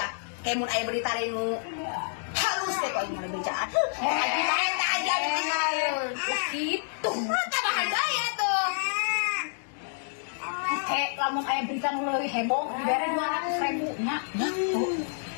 Kemun aya berita nu halus teh kok aing mah becaan. Haji bae teh Haji anu kitu. Tambahan bae atuh. Lamun aya berita nu leuwih heboh dibere 200.000 nya.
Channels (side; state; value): right; silent; digital silence